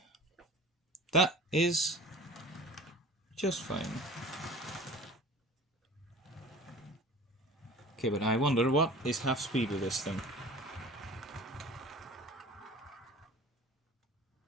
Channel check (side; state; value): both; normal; correlation 0.41